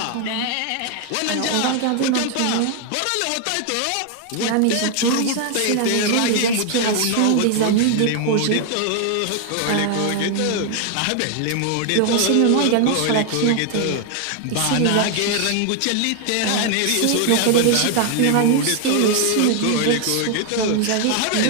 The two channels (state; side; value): different; both; correlation 0.00